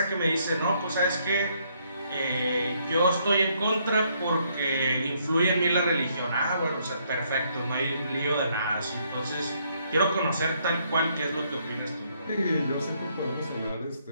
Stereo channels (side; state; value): both; inverted; correlation -0.71